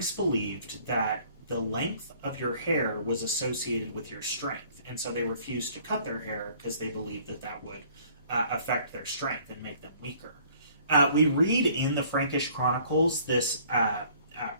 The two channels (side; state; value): both; inverted; correlation -0.57